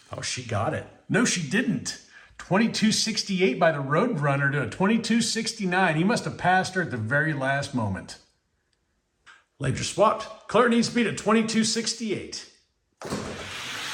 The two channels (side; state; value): both; identical; correlation 1.00